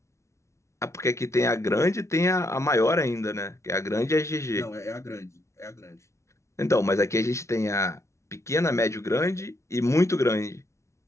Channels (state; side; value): late; right; 0.14 ms